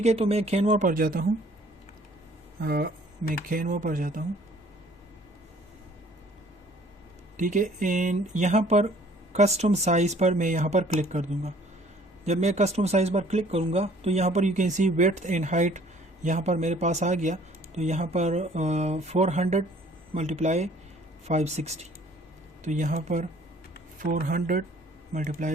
है, तो मैं कैनवा पर जाता हूँ, ठीक है, एंड यहाँ पर कस्टम साइज़ पर मैं यहाँ पर क्लिक कर दूँगा। जब मैं कस्टम साइज़ पर क्लिक करूँगा तो यहाँ पर you can see width and height यहाँ पर मेरे पास आ गया। तो यहाँ पर 400 मल्टीप्लाई 560, तो यहाँ पर 400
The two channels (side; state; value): both; normal; correlation 0.56